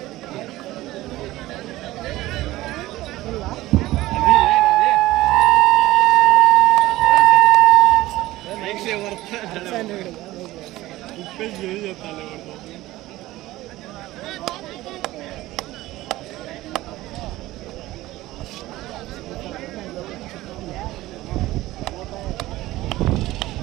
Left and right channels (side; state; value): left; quieter; 17.1 dB